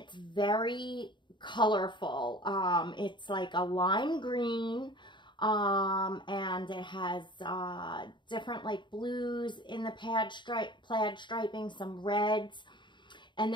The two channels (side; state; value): right; late; 0.23 ms